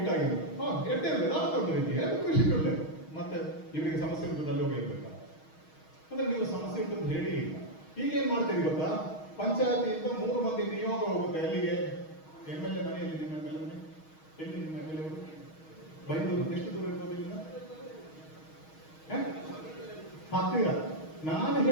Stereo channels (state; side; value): late; right; 6.4 ms